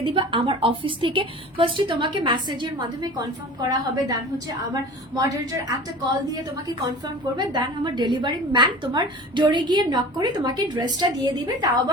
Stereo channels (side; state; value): both; normal; correlation 0.39